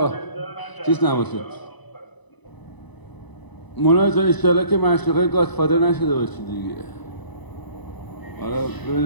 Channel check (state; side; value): late; right; 1.0 ms